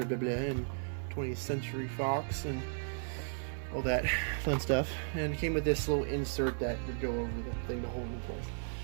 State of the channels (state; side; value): silent; left; 54 dB below the other